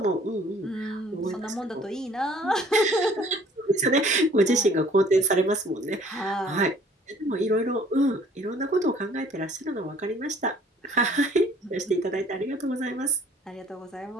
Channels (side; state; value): both; normal; correlation 0.56